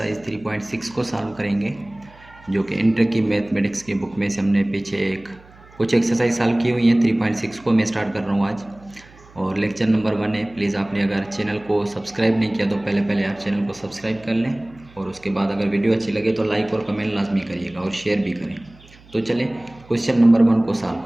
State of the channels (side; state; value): right; noise; hum, 25 dB below the sound